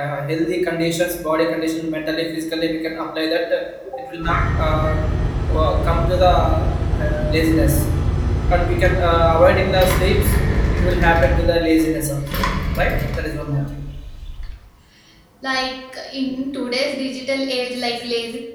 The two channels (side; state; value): both; identical; correlation 1.00